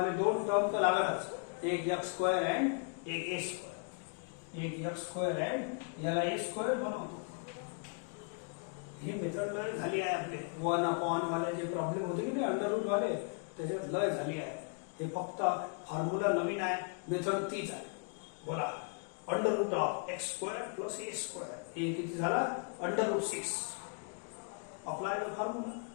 2 टर्म तर लागणारच. एक x² आणि एक a². एक x² आणि याला a² बनवतो. हे मेथड लय झाली आहे आपले 1/1 वाले जे प्रॉब्लेम होते की नाही अंडर रूट वाले, त्याच्यात लय झाली आहे. हे फक्त फॉर्म्युला नवीन आहे, मेथड तीच आहे. बोला under root of x² + a². हे किती झाला? Under root 6. Apply the formula.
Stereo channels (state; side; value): quieter; right; 36.8 dB